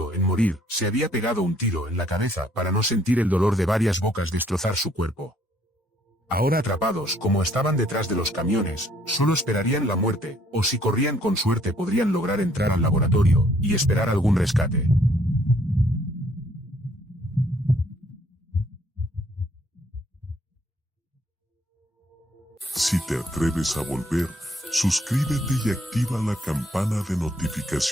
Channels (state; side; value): normal; both; correlation 0.65